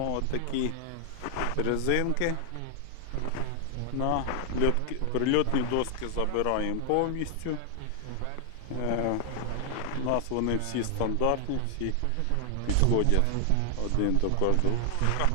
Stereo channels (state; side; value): different; both; correlation 0.00